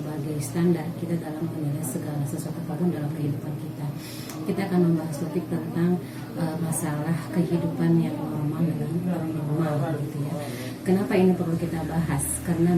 standar kita dalam menilai segala sesuatu apapun dalam kehidupan kita. Kita akan membahas topik tentang masalah kehidupan yang normal dengan normal, gitu ya. Kenapa ini perlu kita bahas? Karena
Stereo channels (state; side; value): identical; both; correlation 1.00